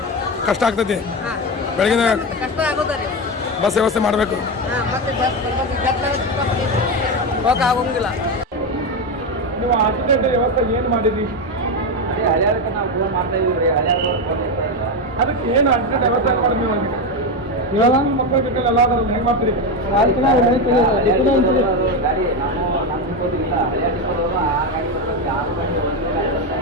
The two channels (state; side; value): normal; both; correlation 0.13